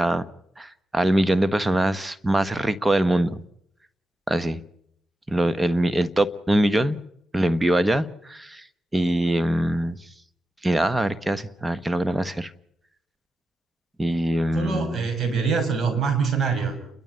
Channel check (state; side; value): normal; both; correlation 0.89